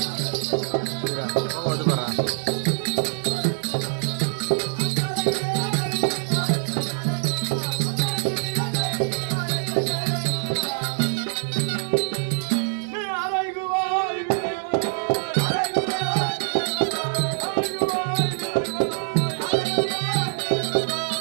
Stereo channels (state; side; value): silent; left; 62 dB below the other